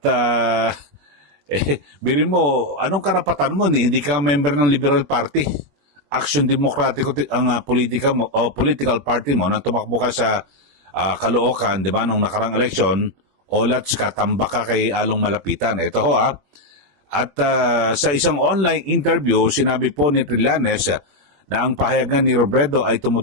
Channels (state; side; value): late; left; 21 ms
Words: birin mo, anong karapatan mo? Hindi ka member ng Liberal Party. Aksyon Demokratiko ang politika mo, o political party mo, nang tumakbo ka sa Caloocan, di ba, nung nakarang eleksyon, olats ka, tambak ka kay Along Malapitan. Ito ho At sa isang online interview, sinabi po ni Trillanes na ang pahayagan ni Robredo ay